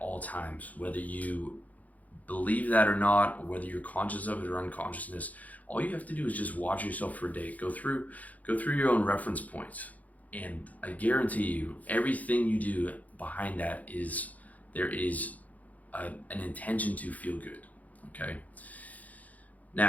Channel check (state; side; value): late; right; 0.076 ms